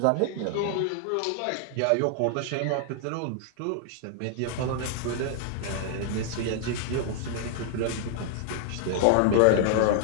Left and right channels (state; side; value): different; both; correlation -0.01